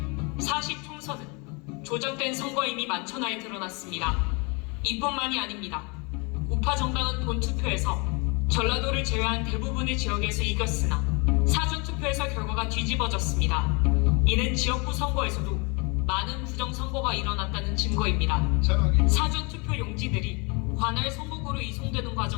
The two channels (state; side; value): quieter; right; 30.6 dB